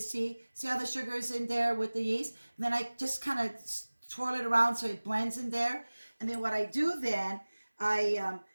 how the sugar is in there with the yeast. And then I just kind of twirl it around so it blends in there. And then what I do then, I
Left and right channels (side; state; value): both; inverted; correlation -1.00